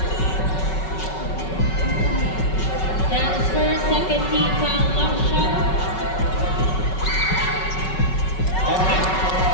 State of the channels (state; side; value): late; right; 5.3 ms